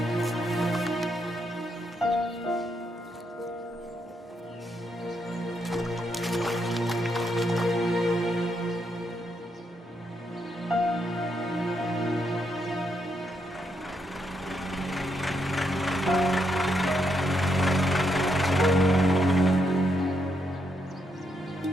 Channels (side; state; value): both; normal; correlation 0.78